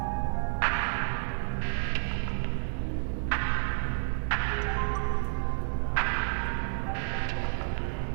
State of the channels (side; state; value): left; silent; digital silence